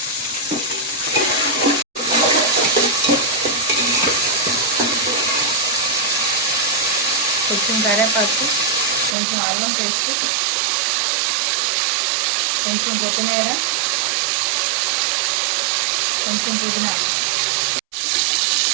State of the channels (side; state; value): left; drops out; at 9.2 s